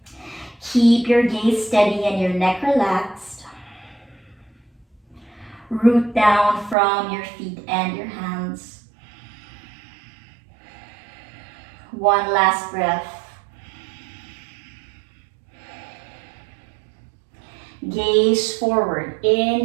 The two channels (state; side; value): drops out; left; at 6.8 s